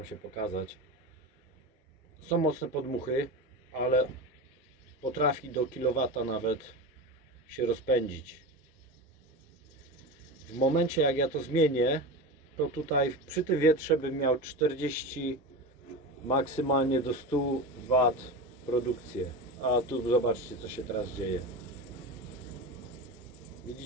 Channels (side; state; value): both; normal; correlation 0.24